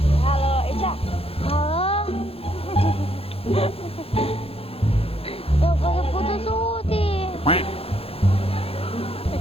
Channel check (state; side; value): late; right; 0.28 ms